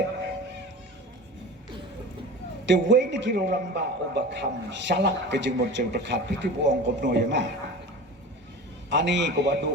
te way ni kiru ramba ubakam salak kejeng murcel berkat piti buong kopno ya ma ani ko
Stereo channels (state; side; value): normal; both; correlation 0.34